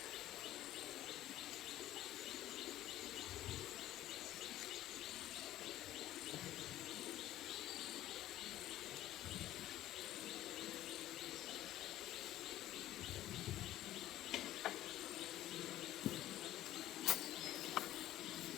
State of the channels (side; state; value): right; quieter; 14.0 dB